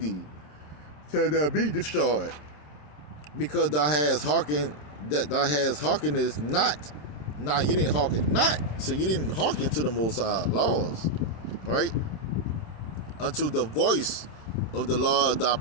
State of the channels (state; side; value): late; right; 27 ms